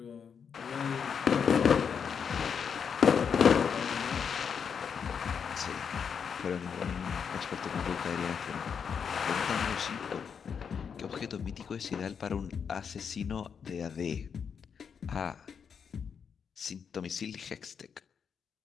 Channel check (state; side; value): quieter; right; 6.8 dB